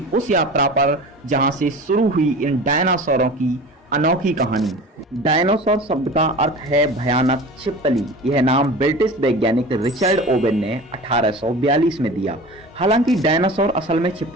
उस यात्रा पर जहां से शुरू हुई इन डायनासोरों की अनोखी कहानी। डायनासोर शब्द का अर्थ है भयानक छिपकली। यह नाम ब्रिटिश वैज्ञानिक रिचर्ड ओवेन ने 1842 में दिया। हालांकि डायनासोर असल में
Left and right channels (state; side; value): normal; both; correlation 0.36